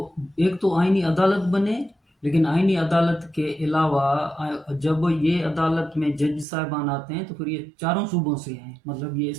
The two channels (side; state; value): left; drops out; at 6.5 s